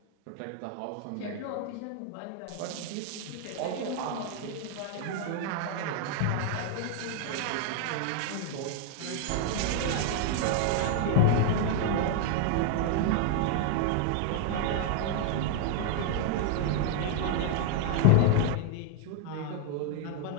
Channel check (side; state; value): both; different; correlation 0.00